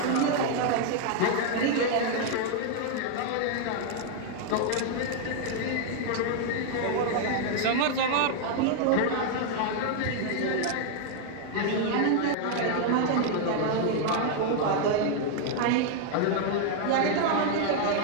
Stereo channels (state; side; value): different; both; correlation 0.00